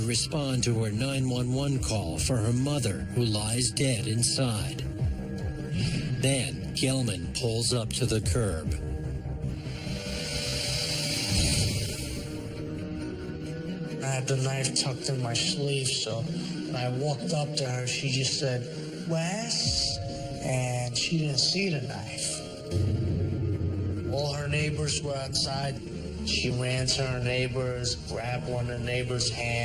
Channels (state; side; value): identical; both; correlation 1.00